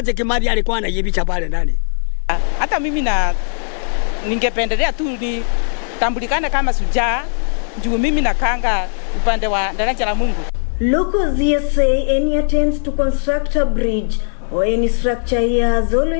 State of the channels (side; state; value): right; silent; digital silence